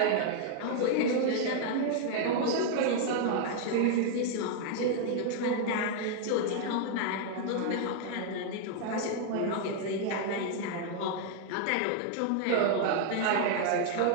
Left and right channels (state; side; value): different; both; correlation 0.00